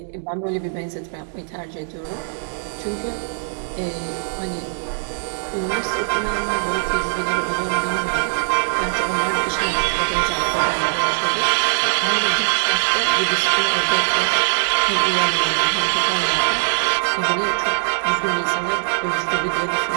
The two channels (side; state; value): left; silent; 61 dB below the other